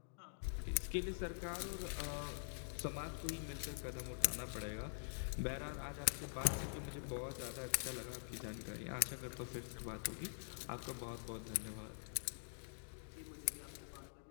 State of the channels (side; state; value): right; silent; digital silence